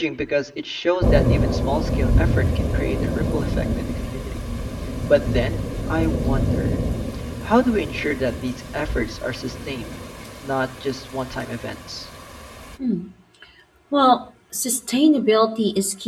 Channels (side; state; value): both; identical; correlation 1.00